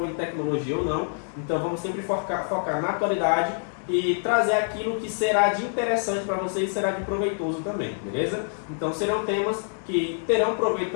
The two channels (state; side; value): silent; right; digital silence